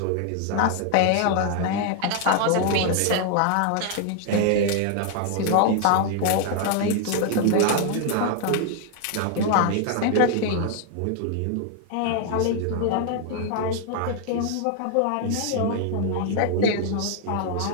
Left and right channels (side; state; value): both; different; correlation 0.00